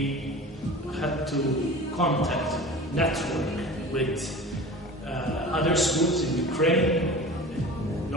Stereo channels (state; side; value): normal; both; correlation 0.37